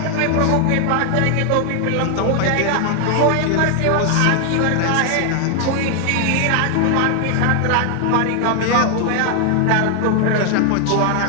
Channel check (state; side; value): different; both; correlation 0.00